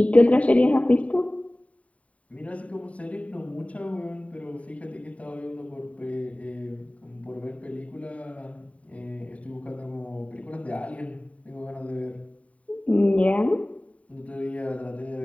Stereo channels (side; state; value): right; late; 0.067 ms